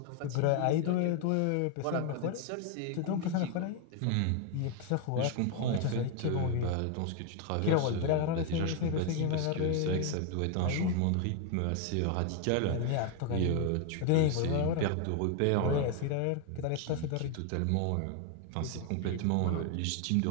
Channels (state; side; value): different; both; correlation 0.01